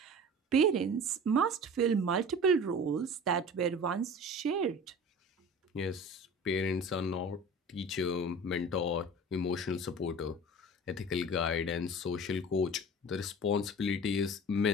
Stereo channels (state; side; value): normal; both; correlation 0.38